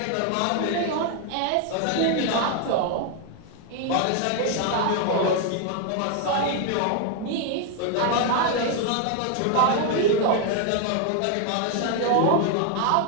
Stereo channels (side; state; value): both; different; correlation 0.00